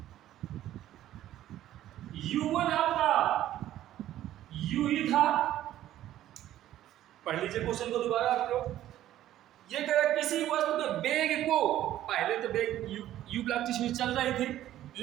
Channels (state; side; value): quieter; left; 13.0 dB